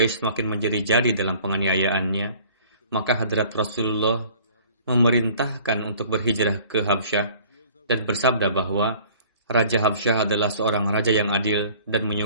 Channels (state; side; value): inverted; both; correlation -0.51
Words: semakin menjadi-jadi dalam penganiayaannya, maka Hadrat Rasulullah memerintahkan untuk berhijrah ke Habsyah dan bersabda bahwa Raja Habsyah adalah seorang raja yang adil dan